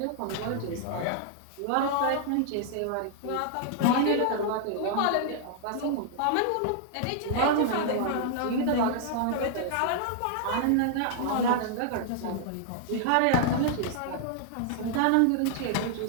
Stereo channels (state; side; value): different; both; correlation -0.01